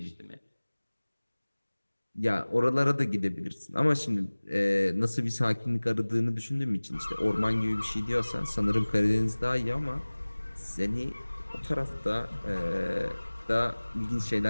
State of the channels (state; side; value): inverted; both; correlation -1.00